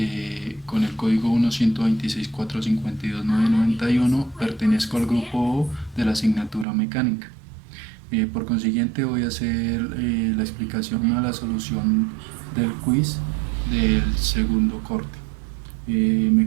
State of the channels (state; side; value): drops out; left; at 6.7 s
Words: con el código 1-126-452-991, pertenezco al grupo O de la asignatura mecánica. Por consiguiente voy a hacer la explicación a la solución del quiz del segundo corte. Me